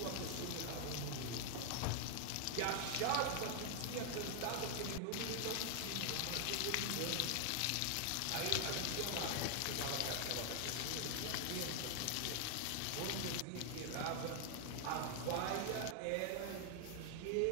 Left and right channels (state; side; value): different; both; correlation 0.00